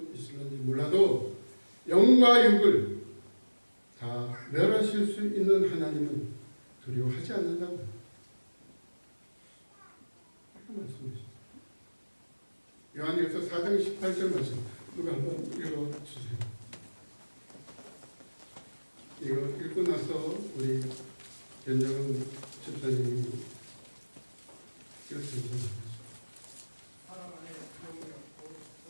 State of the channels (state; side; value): inverted; both; correlation -1.00